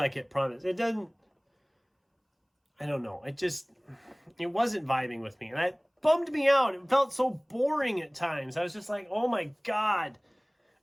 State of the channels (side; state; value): both; identical; correlation 1.00